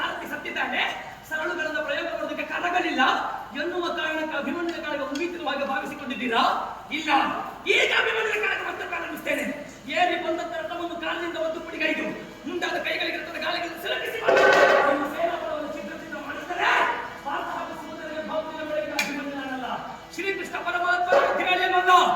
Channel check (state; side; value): identical; both; correlation 1.00